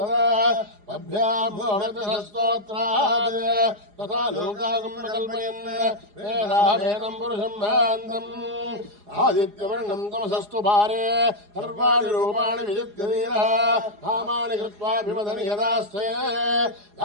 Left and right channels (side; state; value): left; late; 4.8 ms